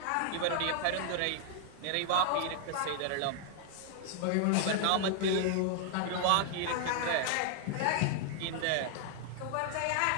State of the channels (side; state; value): both; different; correlation 0.00